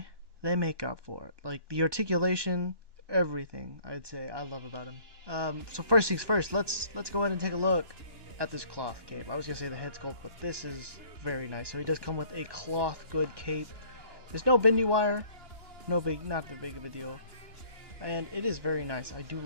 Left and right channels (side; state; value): right; late; 2.9 ms